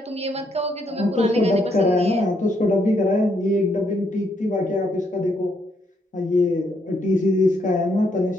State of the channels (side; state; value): both; normal; correlation 0.74